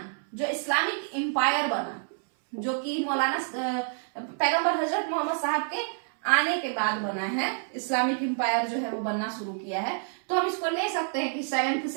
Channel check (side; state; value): left; silent; 59 dB below the other